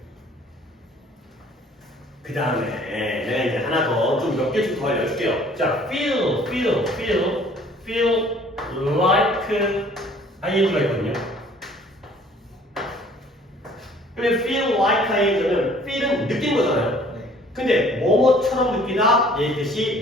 그 다음에 내가 이제 하나 더 좀 몇 개 좀 더 알려줄게요. 자, feel like ing가 있거든요. 근데 feel like ing는 feel은 느낀 거잖아요. 네. 근데 뭐뭐처럼 느끼다 얘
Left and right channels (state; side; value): normal; both; correlation 0.55